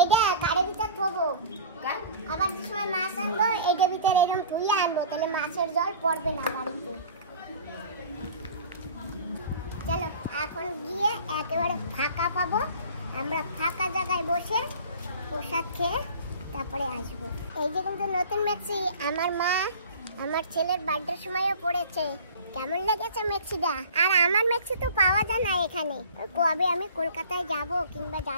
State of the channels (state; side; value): inverted; both; correlation -0.43